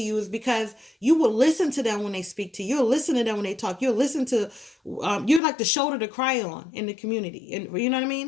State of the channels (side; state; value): right; drops out; at 5.4 s